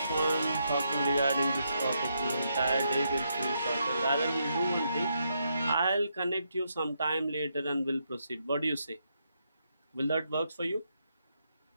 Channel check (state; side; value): inverted; both; correlation -0.79